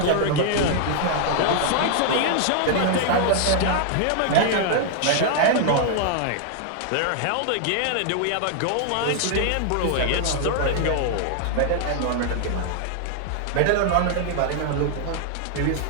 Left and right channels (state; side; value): different; both; correlation 0.00